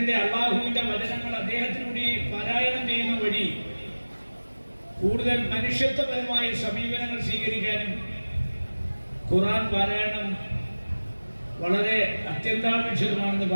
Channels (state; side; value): inverted; both; correlation -1.00